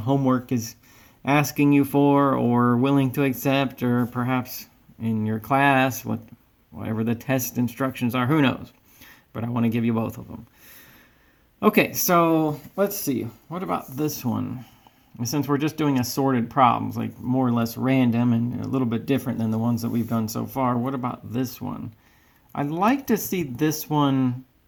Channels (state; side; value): identical; both; correlation 1.00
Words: is asking you for or willing to accept, or perhaps in your class, whatever the test instructions are, who knows? But I want to give you both of them. Okay, so let's see. What about this one? Since we're just doing assorted problems, like more or less random and a little bit different than the ones that we've done so far, what about this one? I'd like to see this one.